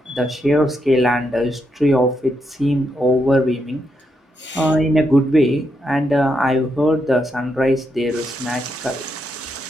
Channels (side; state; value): both; normal; correlation 0.81